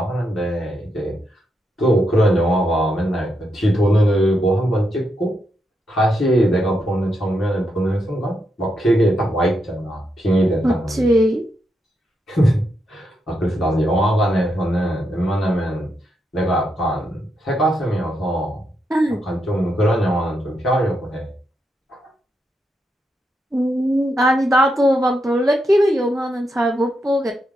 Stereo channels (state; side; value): normal; both; correlation 0.82